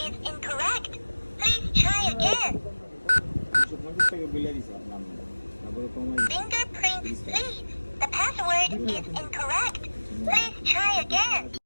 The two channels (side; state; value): both; inverted; correlation -1.00